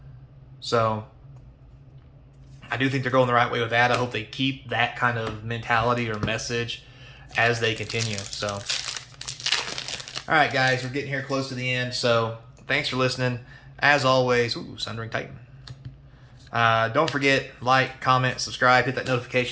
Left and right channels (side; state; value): both; identical; correlation 1.00